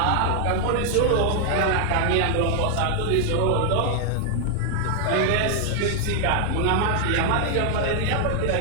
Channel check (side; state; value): both; different; correlation 0.00